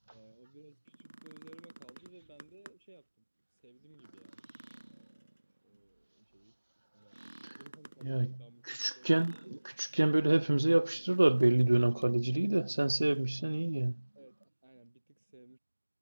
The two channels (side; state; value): both; inverted; correlation -1.00